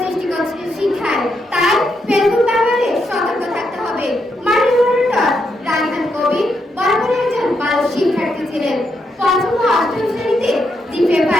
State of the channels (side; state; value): both; normal; correlation 0.80